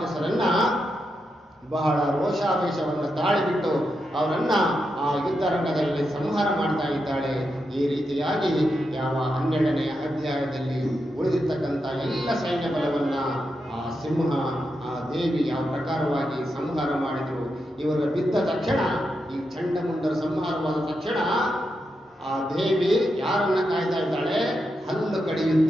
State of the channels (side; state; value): both; normal; correlation 0.85